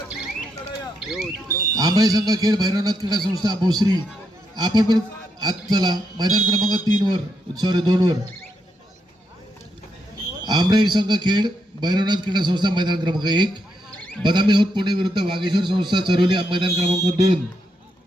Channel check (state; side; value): normal; both; correlation 0.80